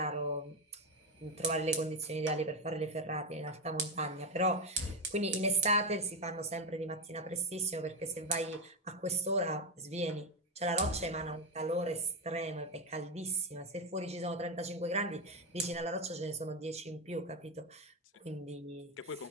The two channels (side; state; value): both; normal; correlation 0.10